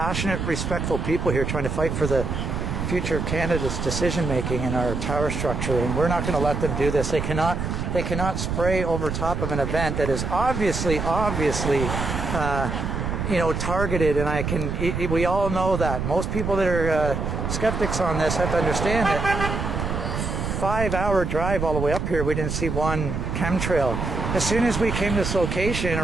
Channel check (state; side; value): noise; right; rumble, 3 dB below the sound